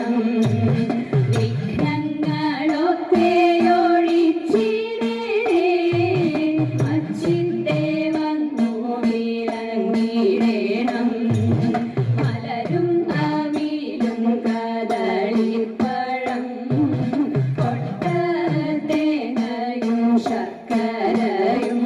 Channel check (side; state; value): both; identical; correlation 1.00